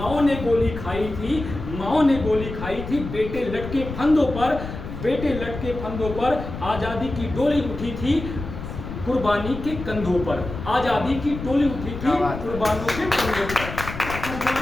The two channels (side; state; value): left; noise; rumble, 8 dB below the sound